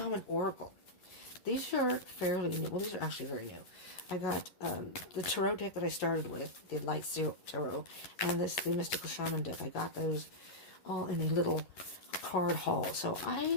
Oracle. These are fairly new. Well, these are actually very new. I got the Tarot deck that I started with, the Light Tarot, and the Mystical Shaman deck. I got those all in a little card haul. So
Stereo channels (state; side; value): late; right; 11 ms